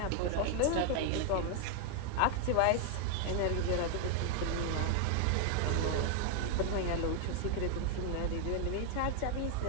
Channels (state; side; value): different; both; correlation 0.00